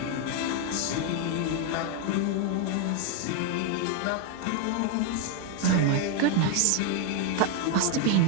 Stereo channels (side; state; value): both; different; correlation 0.01